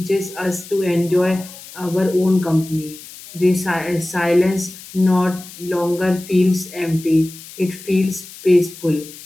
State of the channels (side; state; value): left; noise; hiss, 17 dB below the sound